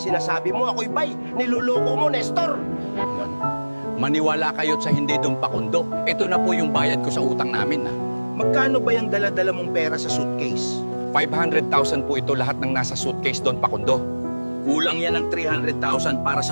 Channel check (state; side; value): inverted; both; correlation -1.00